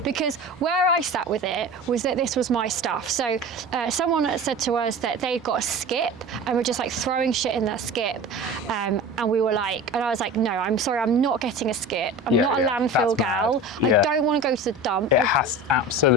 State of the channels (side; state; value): both; normal; correlation 0.34